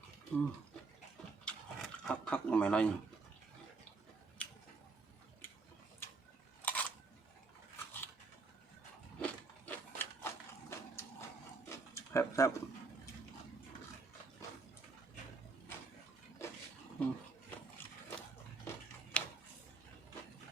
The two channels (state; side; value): quieter; left; 4.0 dB